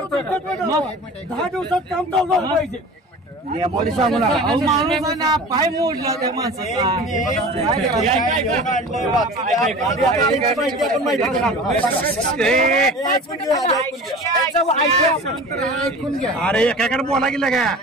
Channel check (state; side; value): normal; both; correlation 0.38